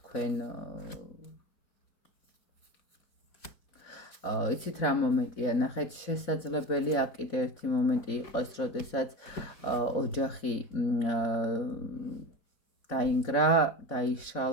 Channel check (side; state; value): right; late; 4.1 ms